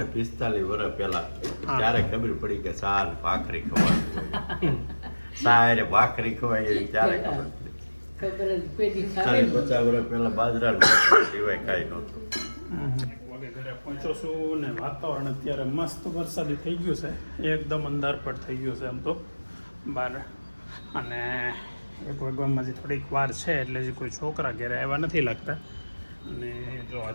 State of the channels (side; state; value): both; inverted; correlation -1.00